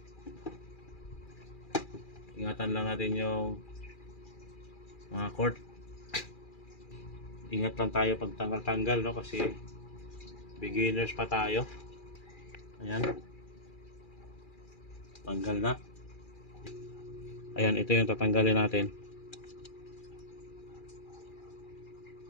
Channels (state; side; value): late; right; 2.4 ms